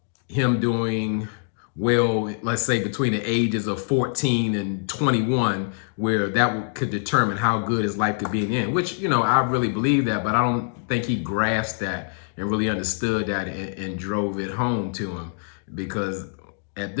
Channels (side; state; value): right; silent; digital silence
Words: him doing well, let's say between the ages of 14 and 21, where could determine how good his life could be in the end, which, I really believe that, but I don't think he grasped that and really understood that and drove it home to him. Because at